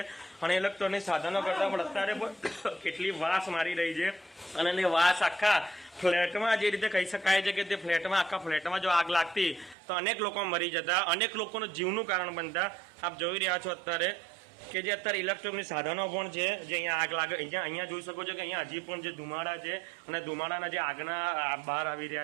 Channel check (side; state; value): left; drops out; at 9.8 s